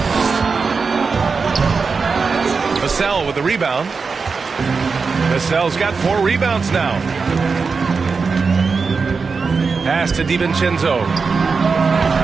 Vassell with the rebound. Vassell's got 4 rebounds now. Pass to DiVincenzo.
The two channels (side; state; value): left; quieter; 4.9 dB